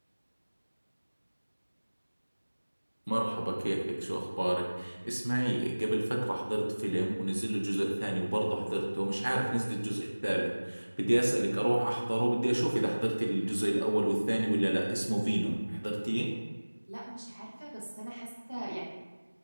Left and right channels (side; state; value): both; inverted; correlation -1.00